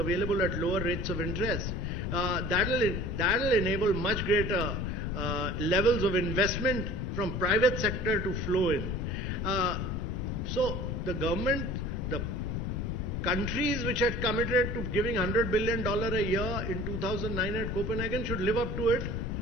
at lower rates of interest. That'll enable much greater levels of investment from private sector to flow in. So the government, the countries which had committed to giving $100 billion a year in 2009 at Copenhagen should live up to it.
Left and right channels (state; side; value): noise; left; rumble, 2 dB below the sound